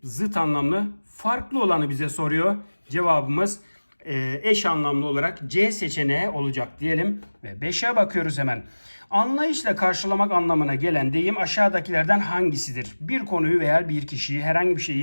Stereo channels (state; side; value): inverted; both; correlation -1.00